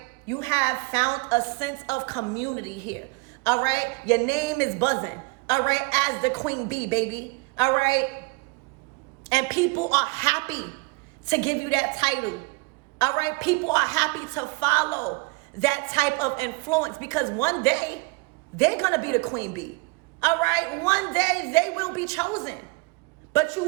you have found a sense of community here. All right, your name is buzzing. All right, as the queen bee, baby. All right, and people are happy to give you that title. All right, people are happy to follow that type of influence, because one day they're going to be the queen bee. All right, one day they will be chosen. But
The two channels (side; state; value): left; quieter; 27.4 dB